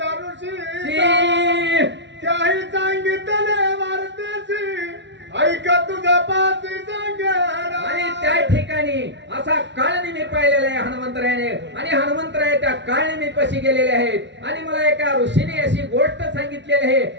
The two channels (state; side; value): late; left; 0.52 ms